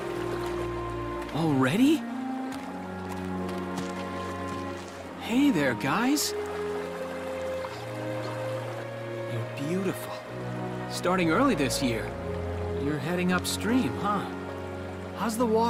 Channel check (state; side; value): identical; both; correlation 1.00